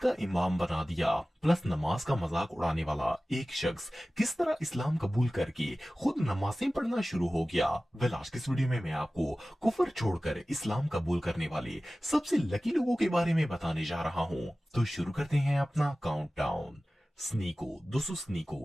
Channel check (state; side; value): normal; both; correlation 0.96